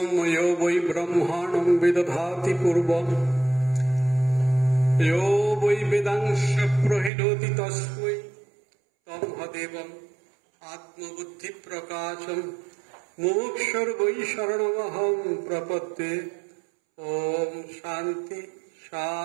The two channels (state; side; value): drops out; left; at 7.1 s